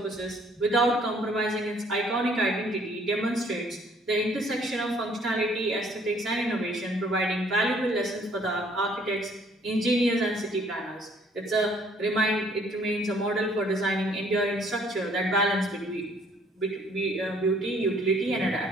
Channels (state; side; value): normal; both; correlation 0.61